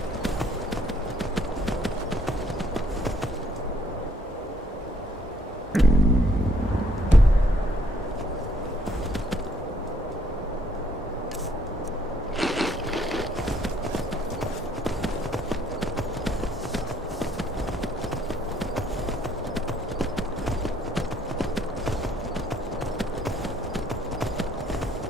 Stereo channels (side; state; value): both; normal; correlation 0.66